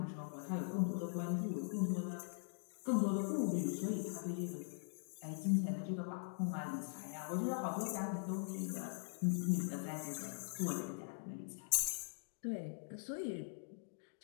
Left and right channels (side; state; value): right; silent; digital silence